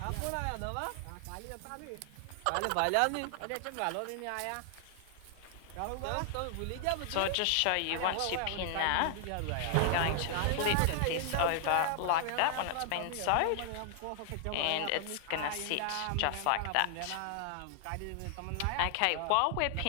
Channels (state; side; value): different; both; correlation 0.00